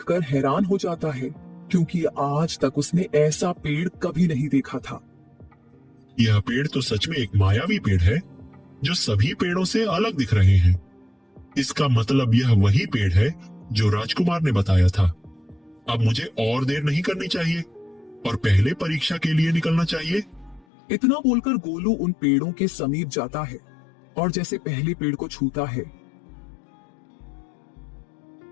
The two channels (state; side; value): drops out; right; at 20.7 s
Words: हैरान हो जाता है, क्योंकि आज तक उसने ऐसा पेड़ कभी नहीं देखा था। यह पेड़ तो सच में एक मायावी पेड़ है, जो सभी पेड़ों से अलग दिख रहे हैं। इसका मतलब यह वही पेड़ है जो राजकुमार ने बताया था। अब मुझे और देर नहीं करनी चाहिए और पहले परीक्षा के लिए निकलना चाहिए। इतना बोलकर गोलू उन पेड़ों के समीप जाता है और जैसे पहले पेड़ को छूता है